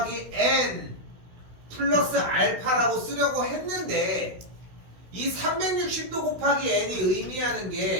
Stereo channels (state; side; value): late; left; 16 ms